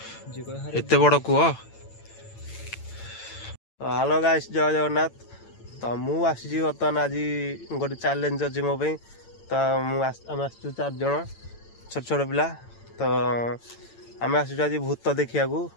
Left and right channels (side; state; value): right; late; 8.9 ms